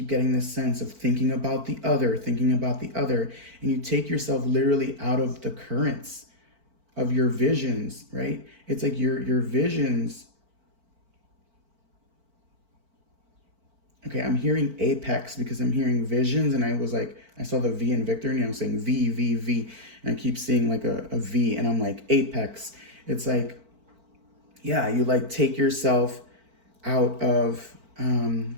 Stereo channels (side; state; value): left; late; 4.5 ms